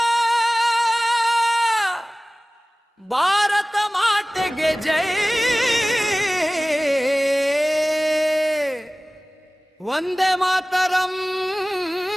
ಭಾರತ ಮಾತೆಗೆ ಜೈ. ವಂದೇ ಮಾತರಂ,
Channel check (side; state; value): both; normal; correlation 0.98